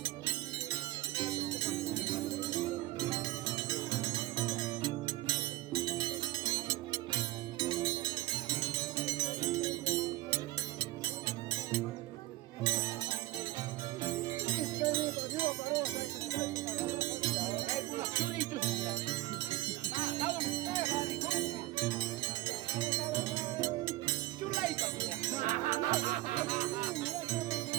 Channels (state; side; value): quieter; left; 16.9 dB